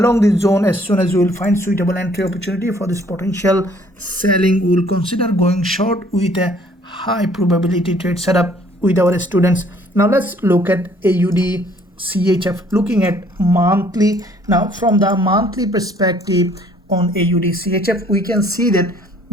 this zone, as soon as we will find suitable entry opportunity for this potential selling, we will consider going short with a high probability trade setup with our students. Now let's look at AUDCHF, looking at monthly. Now from the monthly perspective on AUDCHF, we can see that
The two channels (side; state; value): both; normal; correlation 0.60